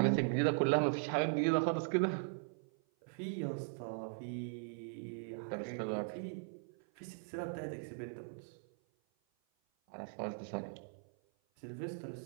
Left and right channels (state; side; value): silent; left; 52 dB below the other